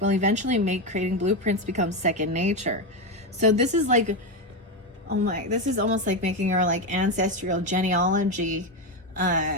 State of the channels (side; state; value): both; normal; correlation 0.11